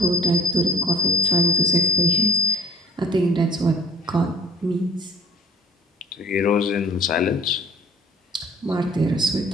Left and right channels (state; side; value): normal; both; correlation 0.46